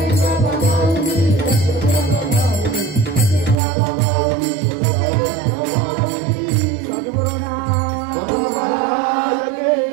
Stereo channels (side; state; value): left; drops out; at 3.6 s